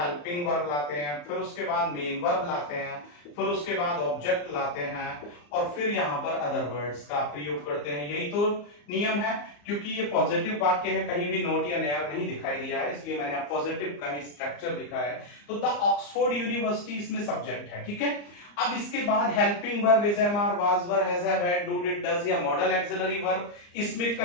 वर्ब लाते हैं, फिर उसके बाद मेन वर्ब लाते हैं, फिर उसके बाद ऑब्जेक्ट लाते हैं, और फिर यहां पर अदर वर्ड्स का प्रयोग करते हैं। यही तो नियम है। क्योंकि ये पॉजिटिव वाक्य है, कहीं भी नॉट या नेयर नहीं दिखाई दिया है, इसलिए मैंने पॉजिटिव का ही स्ट्रक्चर लिखा है। तो द ऑक्सफोर्ड यूनिवर्सिटी इसमें सब्जेक्ट है, ठीक है। अब इसके बाद helping verb is am are, was were, has have, had, do, did, does या मॉडल एक्सिलरी वर्ब इसमें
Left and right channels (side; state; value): right; late; 34 ms